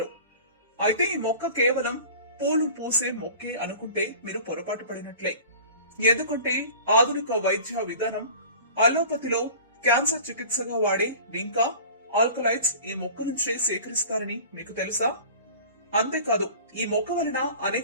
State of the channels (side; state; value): both; inverted; correlation -0.41